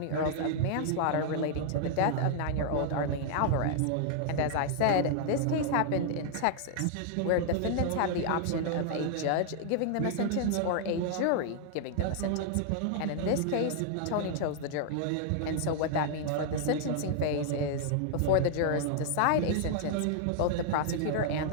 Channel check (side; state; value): both; different; correlation -0.01